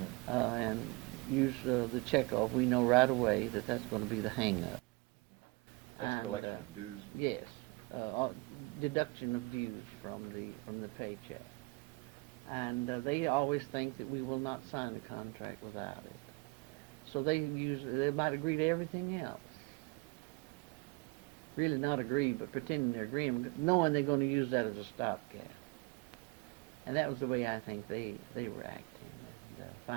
And use the checkoff, we know right away that that's going to be the hang-up. That's collection of dues? Yes. Deduction of dues from the paycheck. And they always think that we will not sign a contract without it. So they might agree to everything else. Really not agree, but pretending they're agreeing, knowing they're going to use that as a stopgap. And that was the way I think they were acting. And,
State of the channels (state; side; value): quieter; left; 26.2 dB